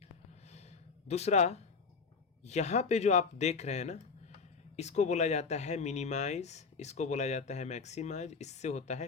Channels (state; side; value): quieter; right; 5.0 dB